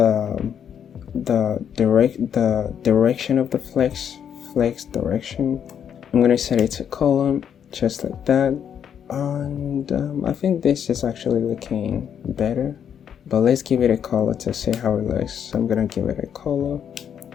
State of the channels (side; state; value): right; quieter; 8.5 dB